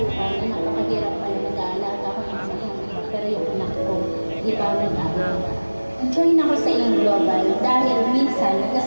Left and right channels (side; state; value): both; inverted; correlation -1.00